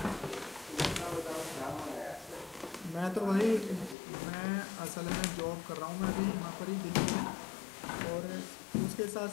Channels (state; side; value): drops out; right; at 4.0 s